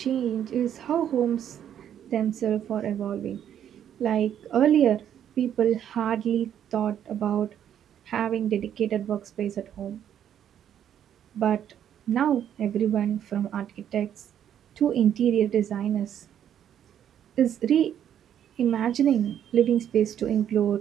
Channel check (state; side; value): quieter; left; 9.8 dB